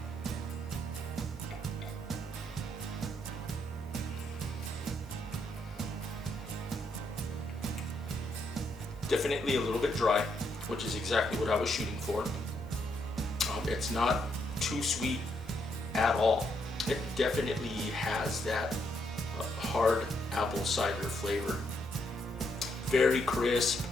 Definitely a little bit dry, which is exactly what I was shooting for. It's not too sweet at all. It definitely has that hard apple cider flavor. Very crisp.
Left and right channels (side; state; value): both; normal; correlation 0.76